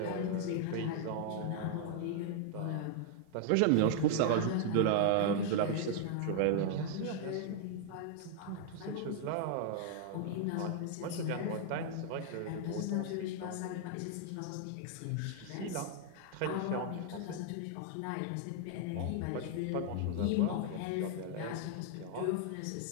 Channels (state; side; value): different; both; correlation 0.00